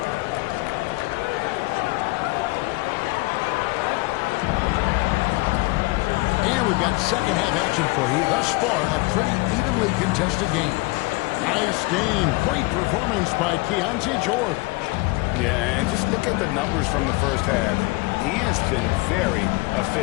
And we've got second half action for you. Thus far, a pretty evenly contested game. Nice game. Great performance by Keontae George. Yeah, and just look at the numbers from the first half. He has been very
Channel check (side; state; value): right; quieter; 23.6 dB